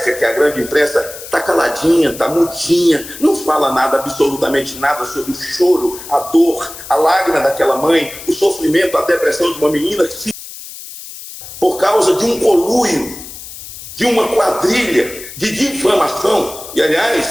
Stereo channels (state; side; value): noise; left; hiss, 13 dB below the sound